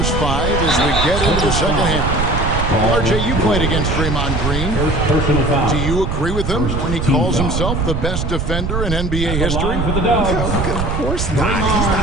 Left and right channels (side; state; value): right; noise; rumble, 1 dB below the sound